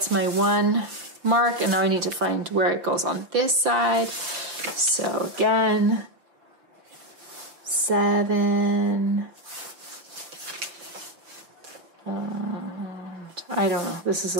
my 1 mark, and now I need to find where it goes on this side. So again, 7, I don't know, this is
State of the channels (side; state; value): left; late; 6.0 ms